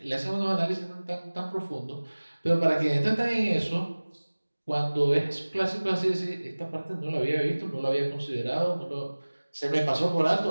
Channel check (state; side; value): inverted; both; correlation -1.00